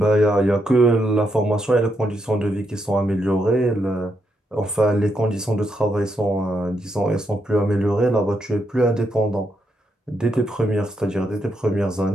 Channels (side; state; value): both; normal; correlation 0.80